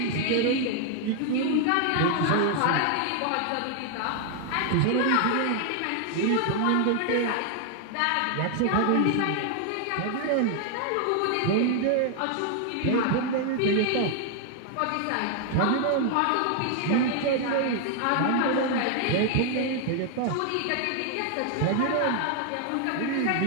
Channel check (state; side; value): different; both; correlation 0.00